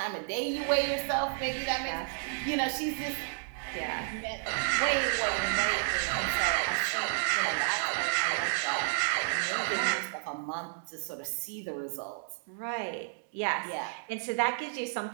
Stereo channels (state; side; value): silent; left; digital silence